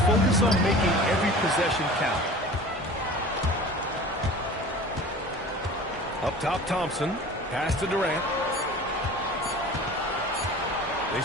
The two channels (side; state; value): both; normal; correlation 0.40